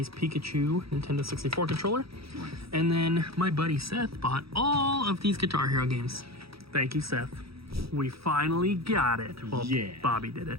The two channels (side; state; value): left; late; 0.76 ms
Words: Pikachu Nintendo 64 controller. And then my buddy Seth bought all of these Guitar Hero games. Thank you, Seth. We finally got it. Well, Yeah. Bobby did